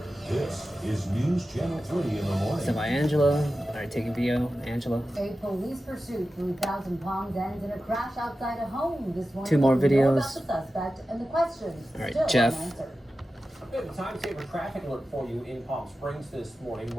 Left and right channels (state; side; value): normal; both; correlation 0.93